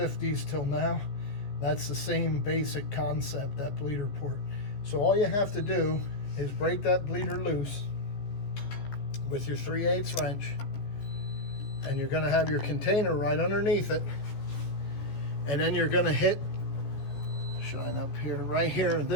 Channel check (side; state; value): right; late; 14 ms